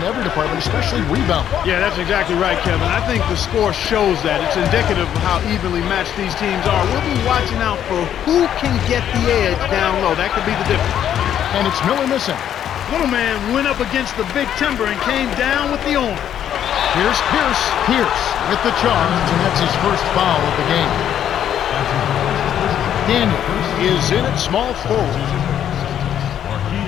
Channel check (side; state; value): right; quieter; 10.1 dB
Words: every department, especially rebound. Yeah, that's exactly right, Kevin. I think the score shows that. It's indicative of how evenly matched these teams are. We'll be watching out for who can get the edge down low. That could be the difference. And it's Miller missing. Little man went up against the big timber and came down with the arm. Here's Pierce. Pierce with the charge, and that's his first foul of the game. Daniels is in at small forward.